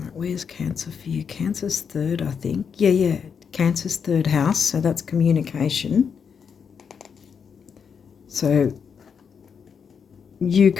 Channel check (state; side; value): quieter; right; 6.6 dB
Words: where's Cancer for you? Cancer's 3rd, I think. Yeah. Cancer's 3rd house, so that's communication. So you